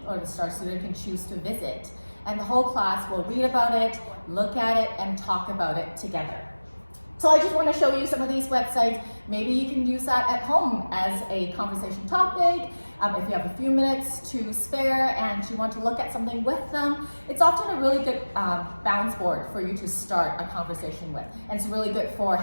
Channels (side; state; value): both; inverted; correlation -1.00